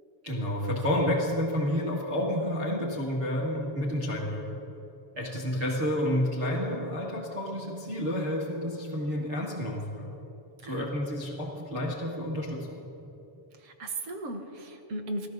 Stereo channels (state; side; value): late; left; 7.1 ms